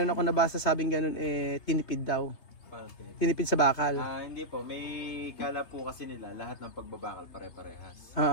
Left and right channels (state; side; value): late; right; 3.3 ms